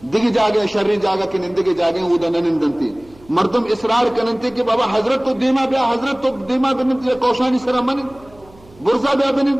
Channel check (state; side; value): noise; right; hum, 26 dB below the sound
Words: دیگه جاگه شر جاگه که نندگه جاگه او دا ننندنتی مردم اصرار کننتی که بابا حضرت تو دیما بیا حضرت تو دیما بننتی کوشانی سرا منن برزا بیا بنن